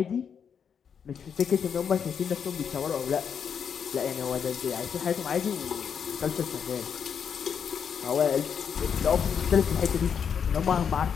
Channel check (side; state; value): right; quieter; 7.2 dB